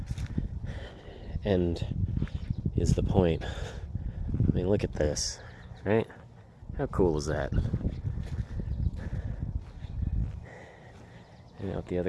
end is the point. I mean, look at this, right? How cool is that? And out the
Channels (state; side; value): identical; both; correlation 1.00